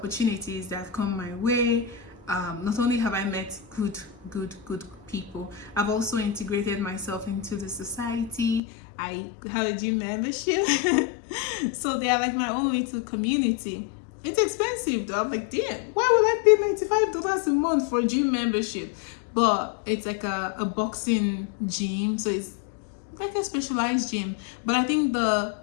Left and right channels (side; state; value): right; drops out; at 8.6 s